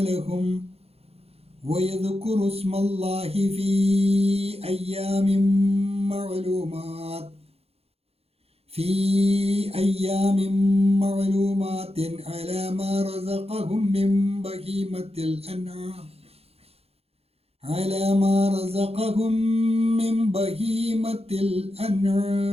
لهم ويذكروا اسم الله في أيام معلومات على ما رزقهم من بهيمة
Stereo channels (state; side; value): late; left; 0.29 ms